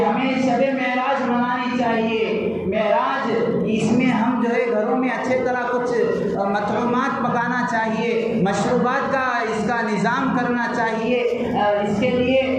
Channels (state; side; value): identical; both; correlation 1.00